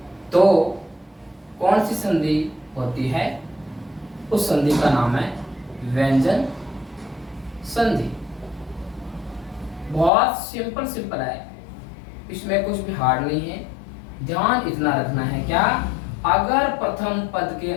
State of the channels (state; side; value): drops out; right; at 10.1 s